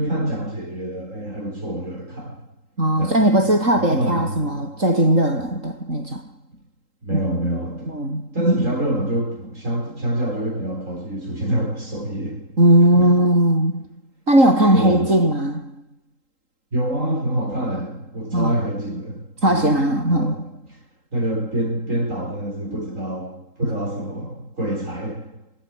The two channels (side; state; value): left; late; 3.8 ms